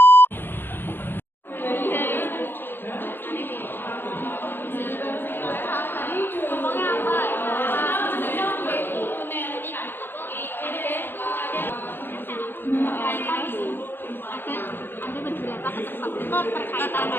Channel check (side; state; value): right; late; 0.096 ms